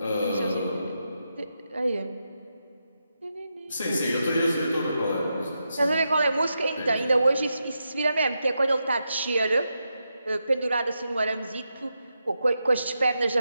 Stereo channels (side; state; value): both; inverted; correlation -0.86